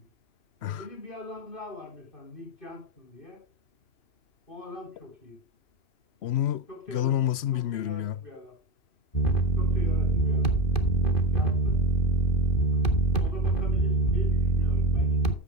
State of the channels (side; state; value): right; late; 3.1 ms